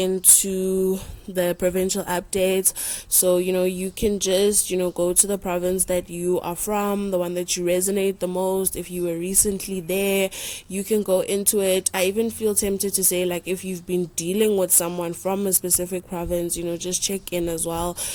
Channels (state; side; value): identical; both; correlation 1.00